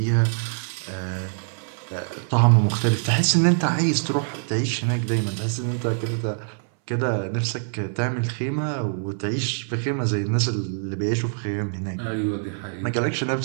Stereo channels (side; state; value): left; silent; 59 dB below the other